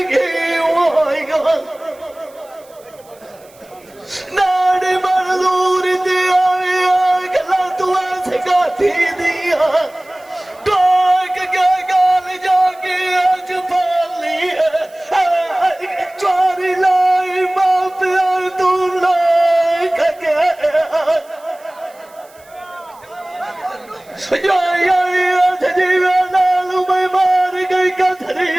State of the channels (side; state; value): right; noise; hiss, 28 dB below the sound